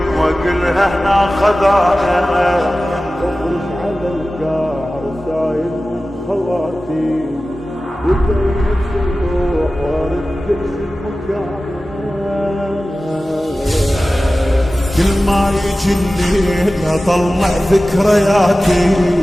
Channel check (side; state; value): both; normal; correlation 0.96